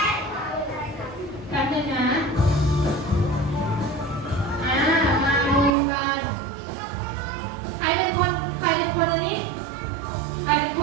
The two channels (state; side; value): drops out; left; at 5.8 s